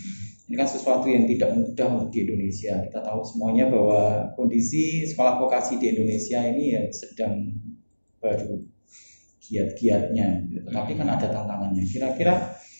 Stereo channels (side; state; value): both; inverted; correlation -1.00